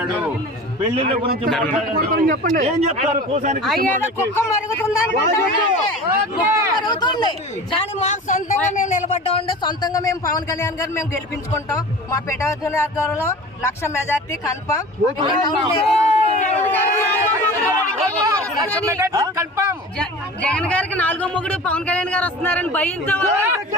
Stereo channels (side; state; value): both; normal; correlation 0.37